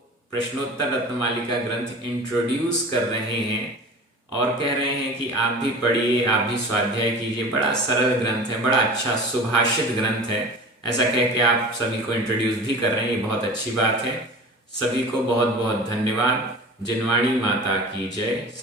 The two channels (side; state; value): both; normal; correlation 0.37